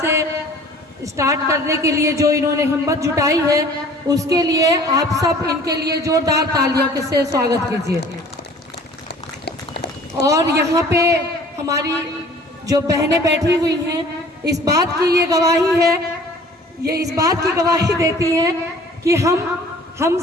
स्टार्ट करने के लिए जो इन्होंने हिम्मत जुटाई है, उसके लिए आप सब इनके लिए जोरदार तालियों के से स्वागत कीजिए। और यहाँ पे हमारी जो बहनें बैठी हुई हैं, इस बात की ये गवाही है, ये इस बात की गवाही देती हैं कि हम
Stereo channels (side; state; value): both; normal; correlation 0.50